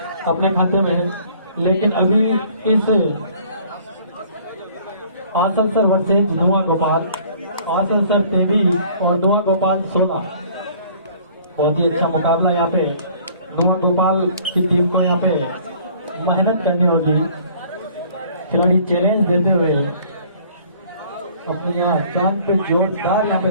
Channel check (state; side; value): inverted; both; correlation -0.54